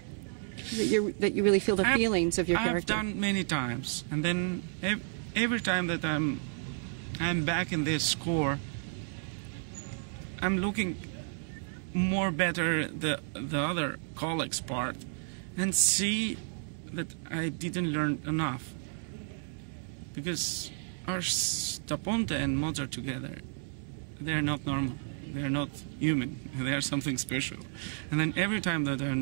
That you really feel the feelings of your character. I've done many times, and then every time that I'm back in this score, I'm looking more better the other colleagues' part, and see that I didn't learn enough. Because Ars da Ponte and Mozart together, they're not normal. They're not human. They are something special. And then every time that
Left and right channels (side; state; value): left; silent; 56 dB below the other